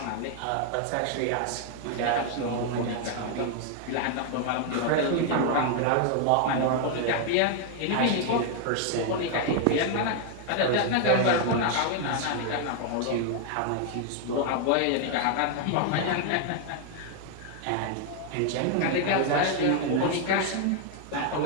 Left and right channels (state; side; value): different; both; correlation 0.00